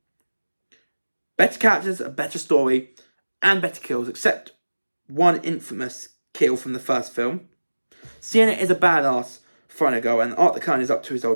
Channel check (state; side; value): inverted; both; correlation -1.00